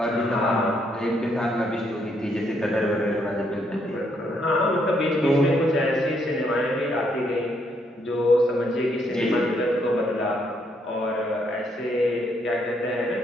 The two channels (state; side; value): normal; both; correlation 0.73